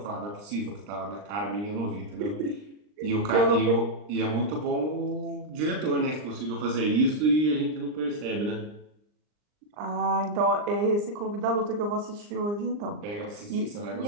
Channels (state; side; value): late; left; 39 ms